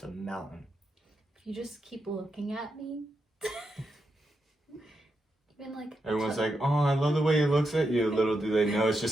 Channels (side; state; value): both; normal; correlation 0.85